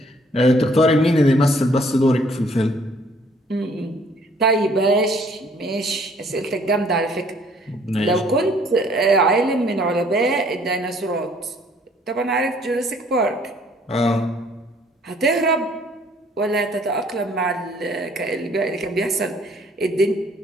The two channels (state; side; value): normal; both; correlation 0.60